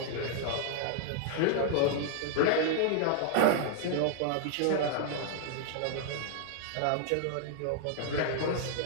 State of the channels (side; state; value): both; different; correlation -0.01